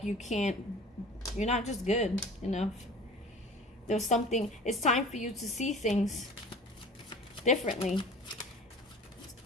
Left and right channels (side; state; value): both; normal; correlation 0.42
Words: you're not just good enough. There's something, it's time for you to see things differently.